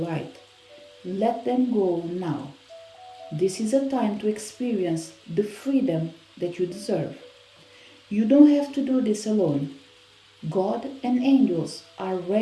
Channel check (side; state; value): both; identical; correlation 1.00